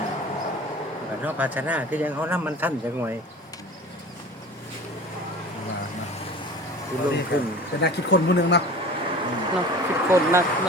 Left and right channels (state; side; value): normal; both; correlation 0.39